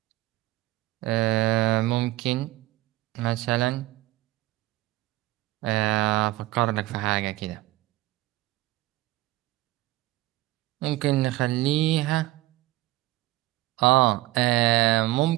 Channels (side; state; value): left; quieter; 17.7 dB